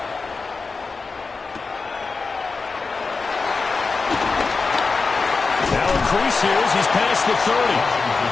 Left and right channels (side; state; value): right; quieter; 4.3 dB